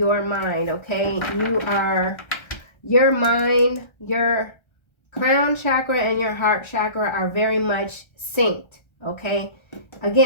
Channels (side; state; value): right; late; 1.3 ms